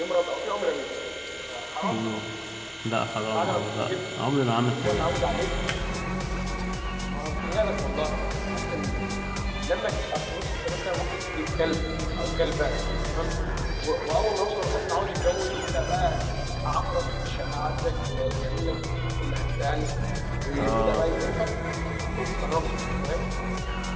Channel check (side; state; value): both; identical; correlation 1.00